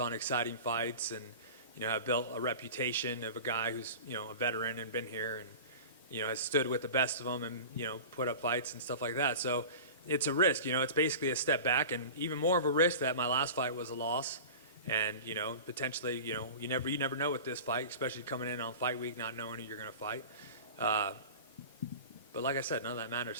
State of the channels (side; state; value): both; inverted; correlation -0.35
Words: exciting fights, and, I've built a reputation of a guy who's, a veteran and been here. has stood with the best of them and, put up fights and stuff like that. So it's a risk, it's basically a step back, and even more of a risk that my last fight was a loss. And, potentially, you never know with this fight, especially coming in on fight week, not knowing who you're going to fight. But like I said, none of that